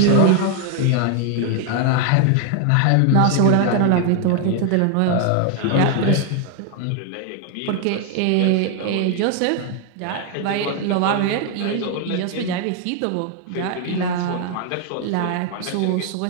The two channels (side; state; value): both; different; correlation 0.00